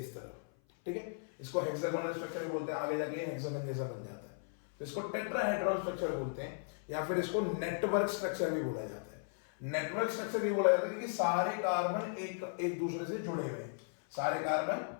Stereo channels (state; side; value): silent; right; 54 dB below the other